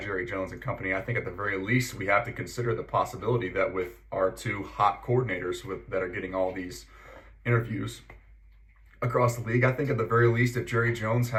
Jones and company? I think at the very least we have to consider the possibility that with our 2 hot coordinators that are getting all these interviews across the league, I think at the very least, if Jerry Jones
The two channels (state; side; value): identical; both; correlation 1.00